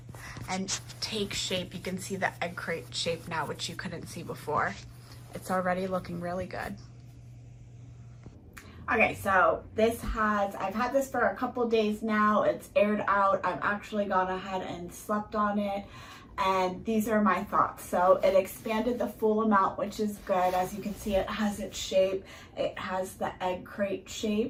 and take shape. You can see the egg crate shape now, which you couldn't see before. It's already looking really good. Okay, so I've had this for a couple days now. It's aired out. I've actually gone ahead and slept on it. And these are my thoughts. So it expanded the full amount, which is good. As you can see, it has its shape. It has the egg crate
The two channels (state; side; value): identical; both; correlation 1.00